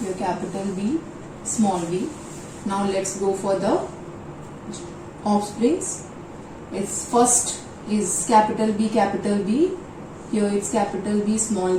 here capital B, small b. Now let's go for the offsprings. Its first is capital B, here it's capital B, small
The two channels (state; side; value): identical; both; correlation 1.00